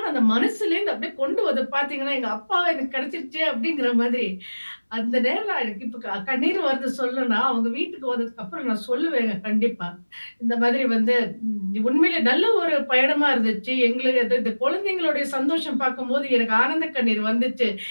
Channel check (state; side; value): inverted; both; correlation -1.00